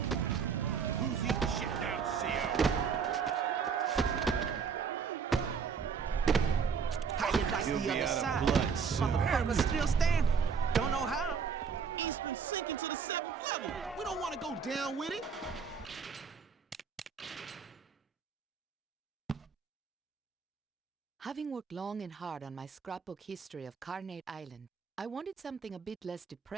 Who's eating shit down, CO? How you like He'll the be other out of side? blood soon. Motherfucker's still standing. Don't know how. Eastern sinking to the 7th level. We don't want to go down with it. Having worked long and hard on my scrapbook history of Carnate Island, I wanted something a bit less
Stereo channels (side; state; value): left; quieter; 6.1 dB